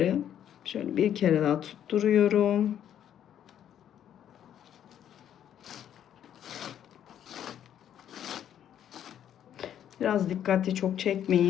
şöyle bir kere daha tutturuyorum. Biraz dikkatli, çok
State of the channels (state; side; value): quieter; right; 10.1 dB